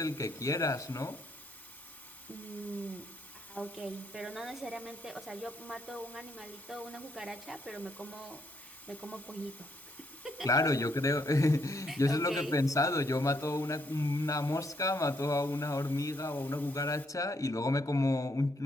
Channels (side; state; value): both; normal; correlation 0.74